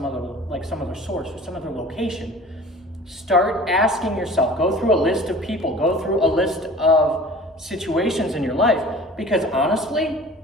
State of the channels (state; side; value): normal; both; correlation 0.43